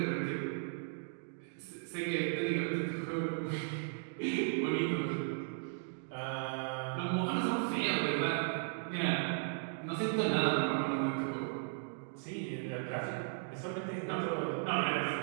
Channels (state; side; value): silent; left; digital silence